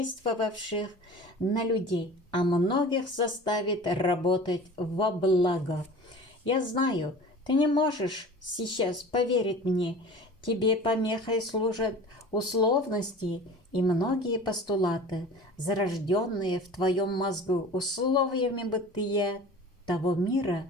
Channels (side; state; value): both; normal; correlation 0.40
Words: на людей, а многих заставит работать во благо. Я знаю, ты не можешь сейчас поверить мне. Тебе помехой служат условности и многие постулаты, зарожденные в твоем мозгу условиями бытия того